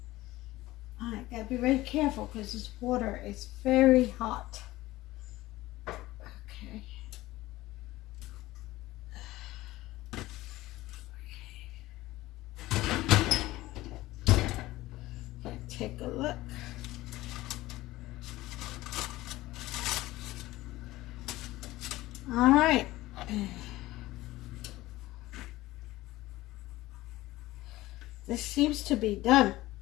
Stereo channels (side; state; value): right; quieter; 17.6 dB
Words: I gotta be very careful because this water is very hot. Take a look. All right. This seems to be done.